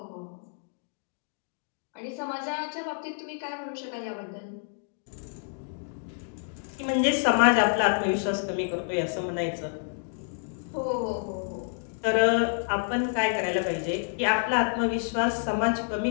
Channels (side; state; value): right; silent; digital silence